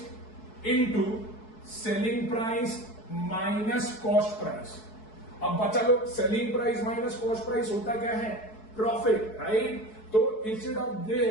into selling price minus cost price. अब बचा लो, selling price minus cost price होता क्या है? Profit, right. So instead of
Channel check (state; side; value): late; right; 4.6 ms